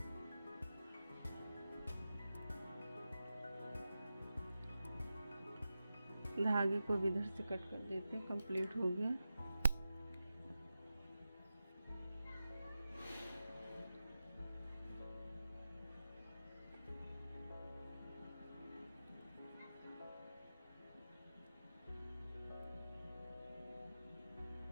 धागे को भी इधर से कट कर देते हैं। कंप्लीट हो गया।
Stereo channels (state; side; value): inverted; both; correlation -0.92